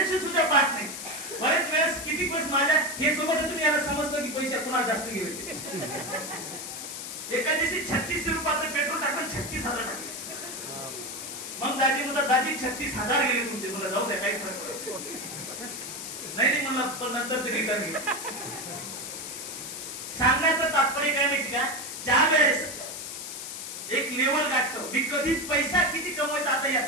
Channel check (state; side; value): noise; left; hiss, 8 dB below the sound